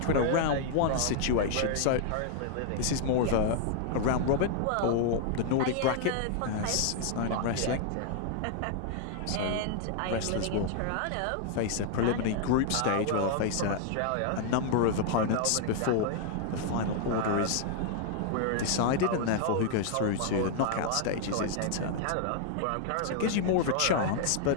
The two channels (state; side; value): different; both; correlation 0.00